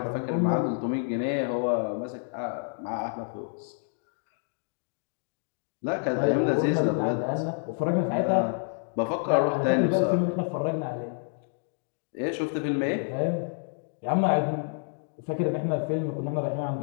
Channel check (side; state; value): right; silent; 59 dB below the other